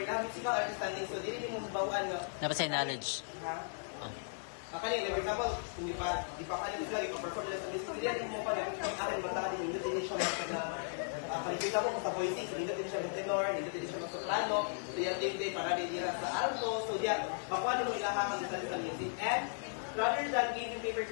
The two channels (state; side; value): silent; right; digital silence